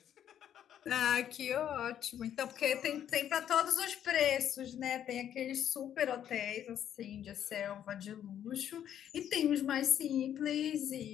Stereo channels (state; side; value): quieter; right; 10.1 dB